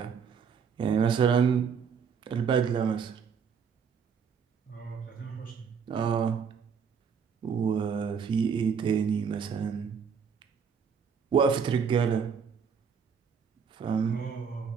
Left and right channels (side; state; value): left; quieter; 6.5 dB